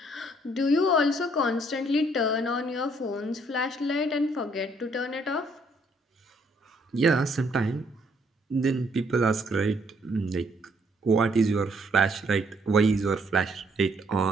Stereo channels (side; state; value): both; normal; correlation 0.67